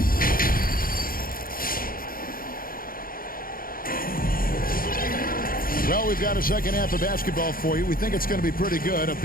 Well, we've got a second half of basketball for you. We think it's going to be pretty good. A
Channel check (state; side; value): late; right; 0.42 ms